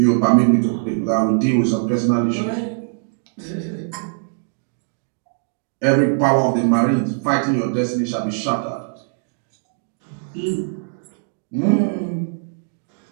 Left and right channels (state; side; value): silent; left; digital silence